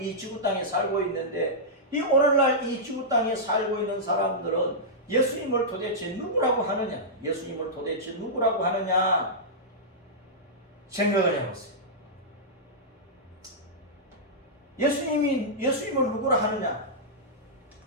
이 지구 땅에 살고 있는데, 이 오늘날 이 지구 땅에 살고 있는 사람들은 예수님을 도대체 누구라고 하느냐? 예수님을 도대체 누구라고 하느냐? 생각을 해봤어요. 예수님을 누구라 하느냐?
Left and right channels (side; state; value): both; normal; correlation -0.12